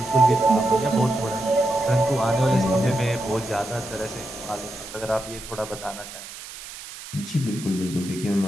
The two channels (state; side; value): noise; right; hiss, 13 dB below the sound